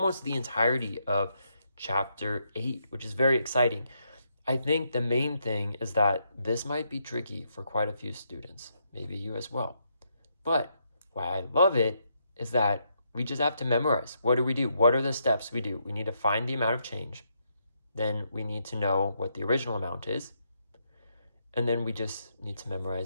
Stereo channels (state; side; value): inverted; both; correlation -0.79